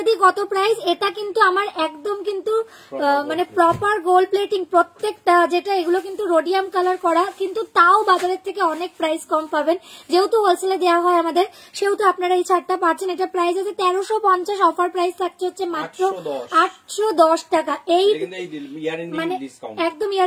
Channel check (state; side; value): identical; both; correlation 1.00